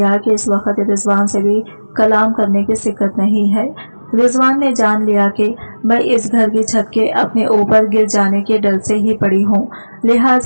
कि इस वक्त रिजवान से भी कलाम करने की सिक्कत नहीं है। रिजवान ने जान लिया कि मैं इस घर की छत के अपने ऊपर गिर जाने के डर से ही पड़ी हूँ,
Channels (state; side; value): inverted; both; correlation -1.00